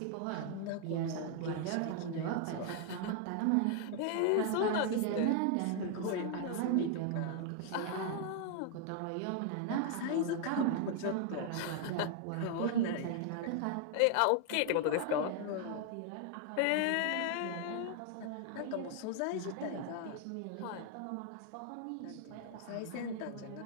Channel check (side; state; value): both; different; correlation 0.00